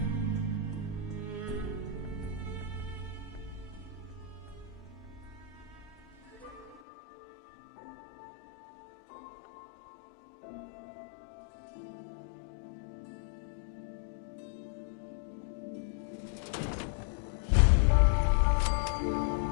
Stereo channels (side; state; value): right; drops out; at 6.8 s